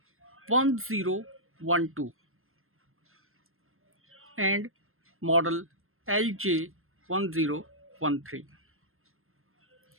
and model LJ1013.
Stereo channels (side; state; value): left; late; 0.61 ms